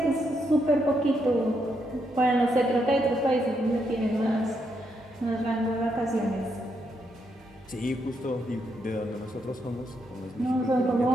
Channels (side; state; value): both; normal; correlation 0.79